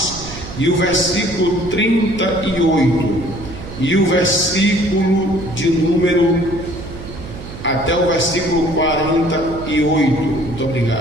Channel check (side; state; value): right; noise; hum, 12 dB below the sound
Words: e o versículo 38, e o versículo de número até o versículo 48, muito